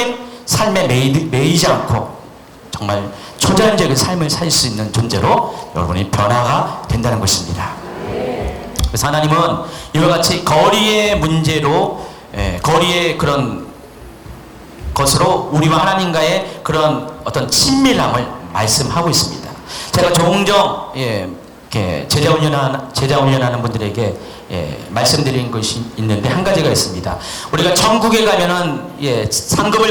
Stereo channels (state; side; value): identical; both; correlation 1.00